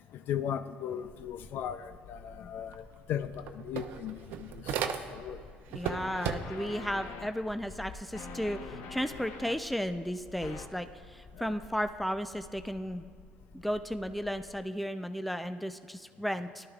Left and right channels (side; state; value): both; normal; correlation 0.77